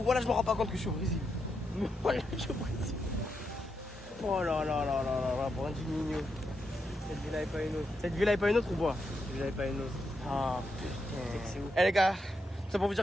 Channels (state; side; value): normal; both; correlation 0.83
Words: je me rends pas compte que je suis au Brésil. Voilà, je suis au Brésil. Oh là, Brandinho. Cette villa est pas une autre. Cette villa est pas une autre ou quoi? Cette villa est pas une autre. Ah putain. Eh les gars, c'est pour vous